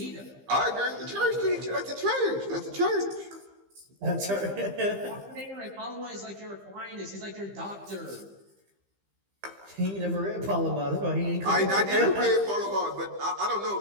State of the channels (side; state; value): left; late; 15 ms